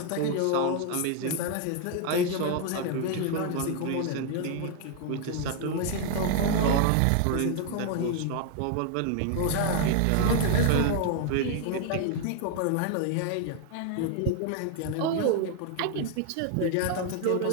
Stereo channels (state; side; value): different; both; correlation 0.00